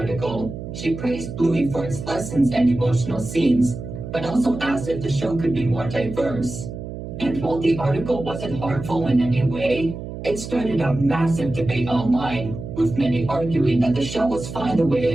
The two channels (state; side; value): noise; right; hum, 9 dB below the sound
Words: she praised Bluey for its lessons and emotional scenes, but also asked if the show could be more diverse. And while the article wasn't harmful in any way, it started a massive debate online, with many arguing that the show was fine the way